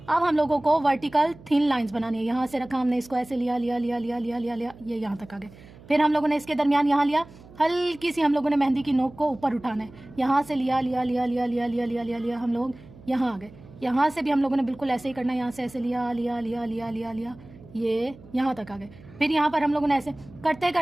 अब हम लोगों को वर्टिकल थिन लाइंस बनानी है। यहाँ से रखा हमने इसको ऐसे, लिया, ये यहाँ तक आ गए। फिर हम लोगों ने इसके दरमियान यहाँ लिया, हल्की सी हम लोगों ने मेहंदी की नोक को ऊपर उठाना है। यहाँ से लिया, हम लोग यहाँ आ गए। यहाँ से भी हम लोगों ने बिल्कुल ऐसे ही करना है। यहाँ से ऐसे लिया, ये यहाँ तक आ गए। फिर यहाँ पर हम लोगों ने ऐसे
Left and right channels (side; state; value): right; noise; hum, 21 dB below the sound